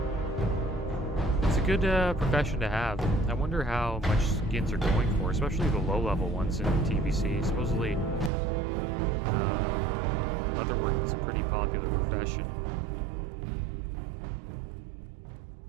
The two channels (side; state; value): left; drops out; at 8.3 s